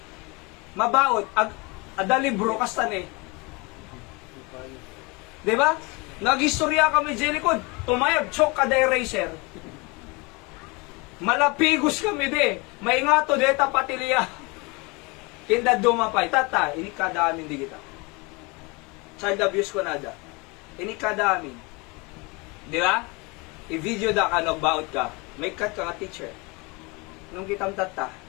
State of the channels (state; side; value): quieter; right; 27.6 dB